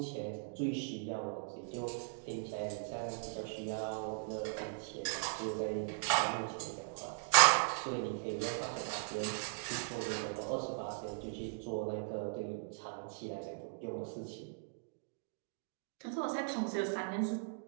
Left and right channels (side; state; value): left; silent; digital silence